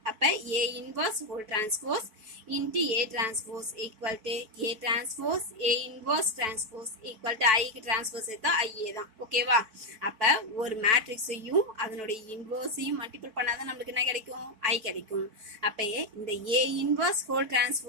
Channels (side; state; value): left; late; 4.6 ms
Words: அப்போ A inverse whole transpose into A transpose equal to A transpose A inverse transpose equal to ஐக்கு டிரான்ஸ்போஸ் எடுத்தா ஐஏ தான். ஓகேவா? அப்போ ஒரு மேட்ரிக்ஸையும் அதனுடைய இன்வர்ஸையும் மல்டிபிள் பண்ணாதான் நம்மளுக்கு என்ன கிடைக்கும்? ஐ கிடைக்கும். அப்போ இந்த ஏ இன்வர்ஸ் ஹோல்